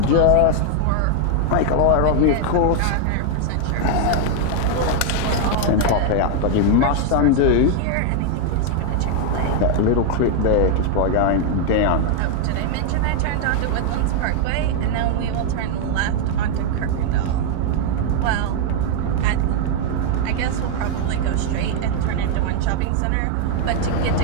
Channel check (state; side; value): different; both; correlation 0.00